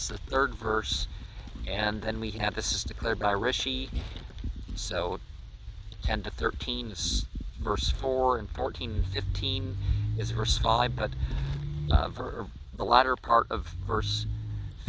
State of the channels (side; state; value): both; identical; correlation 1.00